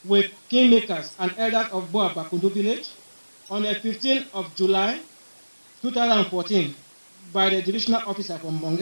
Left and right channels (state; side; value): inverted; both; correlation -1.00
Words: with kingmakers and elders of Bakundu village on the 15th of July 2014 by the divisional officer from